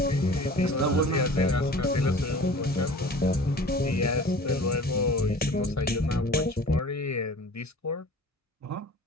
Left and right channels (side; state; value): both; normal; correlation 0.43